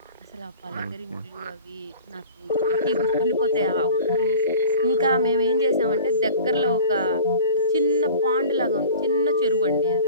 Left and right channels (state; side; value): inverted; both; correlation -0.40